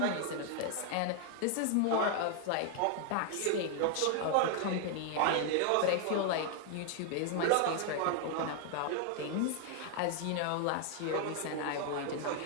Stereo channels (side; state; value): both; different; correlation 0.00